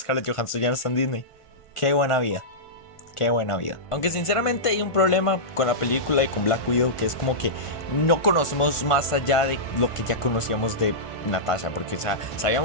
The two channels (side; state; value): right; late; 1.5 ms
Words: Johansson ya no está en Disney. Qué buena vida. Qué buena vida. Aunque sinceramente hay un problema con la película y con Black Widow, que es como que no conocemos más allá de lo que ya conocíamos de Natasha, porque o sea,